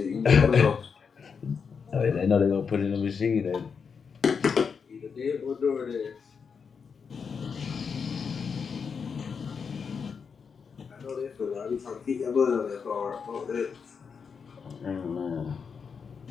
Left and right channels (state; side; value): quieter; right; 6.0 dB